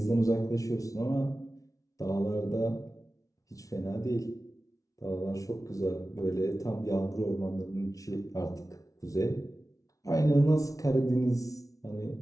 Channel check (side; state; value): right; late; 0.17 ms